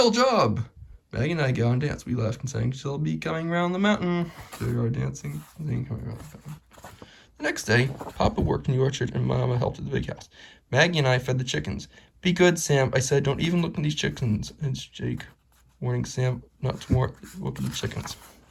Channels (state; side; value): identical; both; correlation 1.00